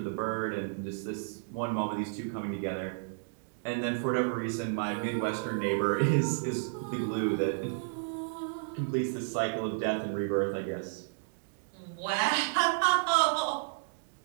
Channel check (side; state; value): left; silent; digital silence